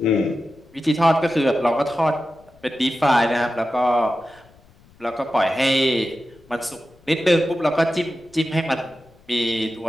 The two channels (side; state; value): left; noise; rumble, 28 dB below the sound